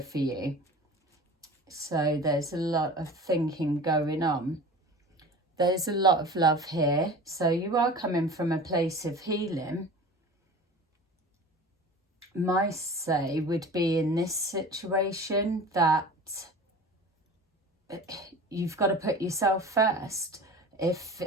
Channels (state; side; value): normal; both; correlation 0.38